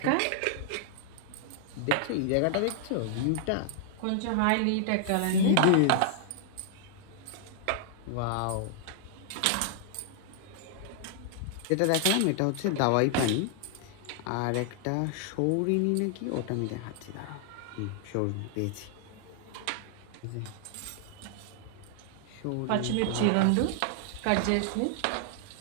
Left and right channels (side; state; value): both; different; correlation 0.00